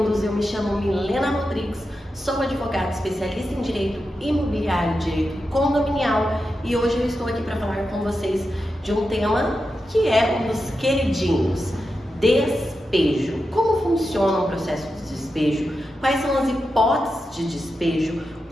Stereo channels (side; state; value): both; normal; correlation 0.89